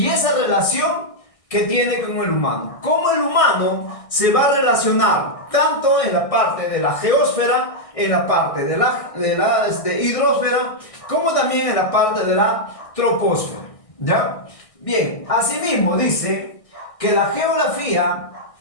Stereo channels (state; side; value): late; right; 1.6 ms